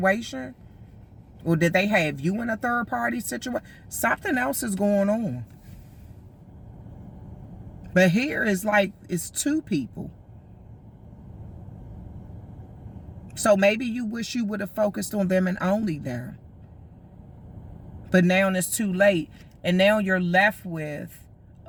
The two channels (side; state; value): both; identical; correlation 1.00